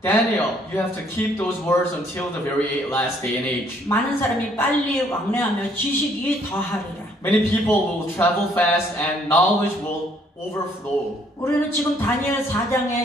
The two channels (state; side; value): normal; both; correlation 0.64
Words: Daniel, you have to keep those words until the very last day and age. 많은 사람이 빨리 왕래하며 지식이 더하리라. Many people will travel fast and knowledge will overflow. 우리는 지금 다니엘